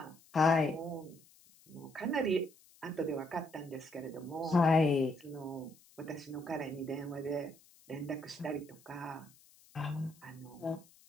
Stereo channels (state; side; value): noise; left; hiss, 27 dB below the sound